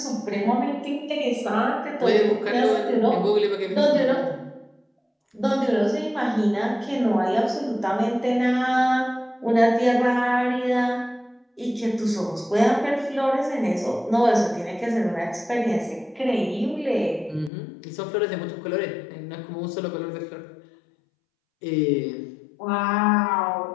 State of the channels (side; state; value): right; drops out; at 17.5 s